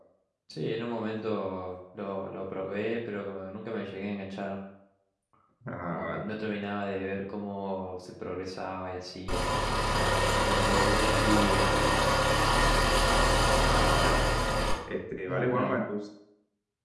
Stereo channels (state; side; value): identical; both; correlation 1.00